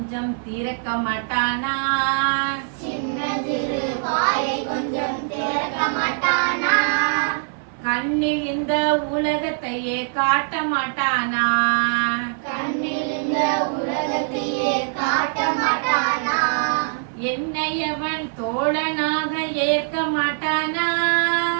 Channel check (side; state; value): left; silent; 57 dB below the other